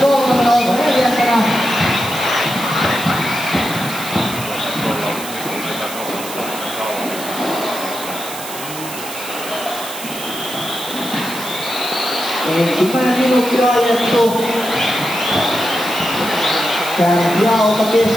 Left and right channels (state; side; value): noise; right; hiss, 10 dB below the sound